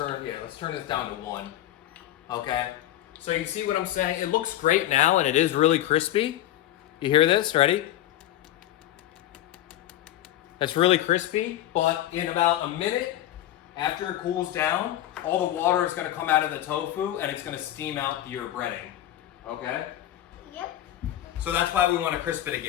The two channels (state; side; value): quieter; right; 13.1 dB